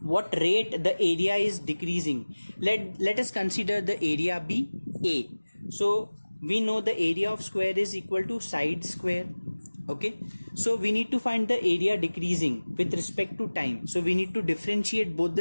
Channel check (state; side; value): inverted; both; correlation -1.00